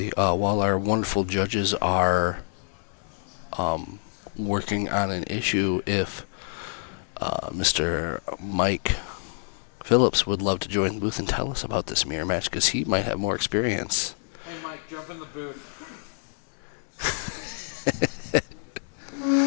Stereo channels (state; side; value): silent; right; digital silence